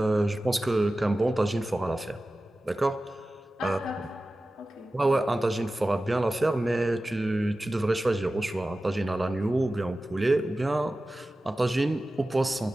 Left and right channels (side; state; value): both; normal; correlation 0.95